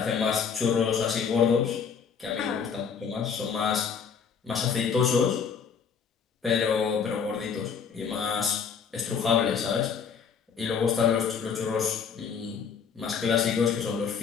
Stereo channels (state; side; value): quieter; right; 6.5 dB